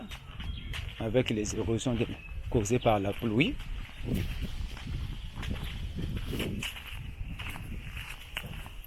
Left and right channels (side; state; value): both; identical; correlation 1.00